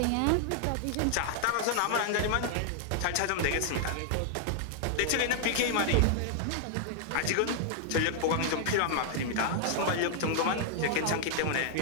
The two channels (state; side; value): different; both; correlation 0.00